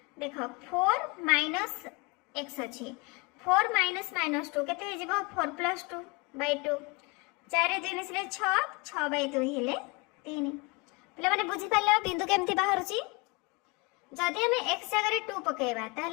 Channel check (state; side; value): quieter; right; 27.9 dB